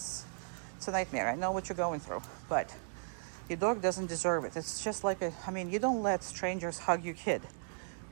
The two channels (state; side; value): silent; left; digital silence